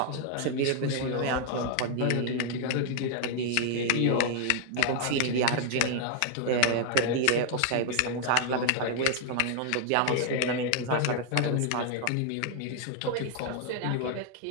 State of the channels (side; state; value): both; different; correlation 0.00